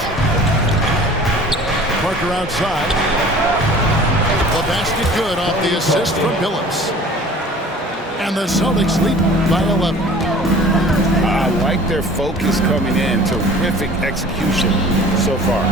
Parker outside. The basket good off the assist from Billups. And the Celtics lead by 11. I like their focus coming in. Terrific execution so far.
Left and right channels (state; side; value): normal; both; correlation 0.46